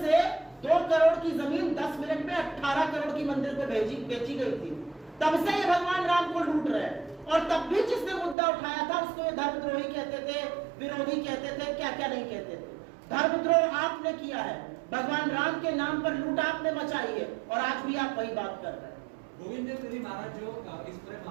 से 2 करोड़ की जमीन 10 मिनट में 18 करोड़ की मंदिर को बेची गई थी। तब से ये भगवान राम को लूट रहे हैं। और तब भी जिसने मुद्दा उठाया था उसको ये धर्मद्रोही कहते थे, विरोधी कहते थे, क्या क्या नहीं कहते थे। धर्मद्रोह आपने किया है, भगवान राम के नाम पर लूट आपने मचाई है, और आज भी आप वही बात कर रहे हैं। गोविंद देव गिरी महाराज जो इस पूरे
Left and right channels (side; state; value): left; drops out; at 8.3 s